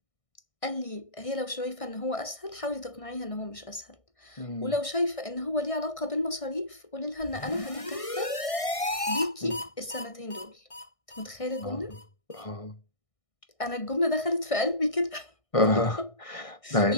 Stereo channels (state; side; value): late; right; 1.6 ms